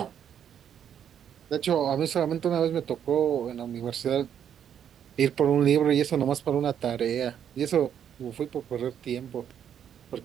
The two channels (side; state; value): left; quieter; 9.0 dB